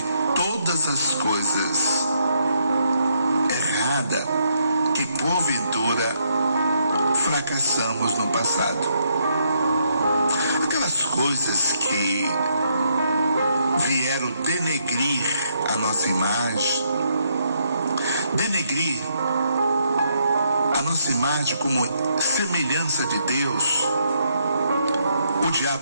todas as coisas erradas que porventura fracassamos no passado. Aquelas coisas que vieram denegrir a nossa imagem, denegrir a nossa imagem como semelhança de Deus, o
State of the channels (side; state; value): both; inverted; correlation -0.76